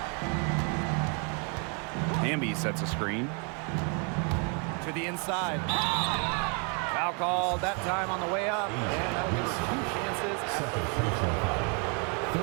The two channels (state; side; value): quieter; left; 37.0 dB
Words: Hamby sets a screen. To the inside. Foul called that time on the way up. And that'll give her 2 chances.